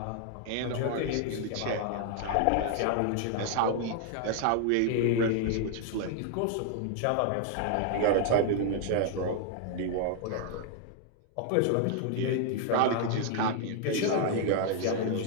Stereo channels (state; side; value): different; both; correlation 0.00